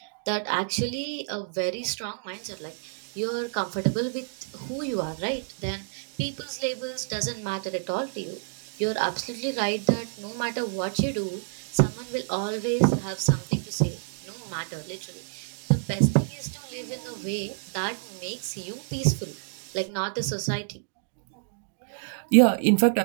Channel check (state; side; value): silent; left; digital silence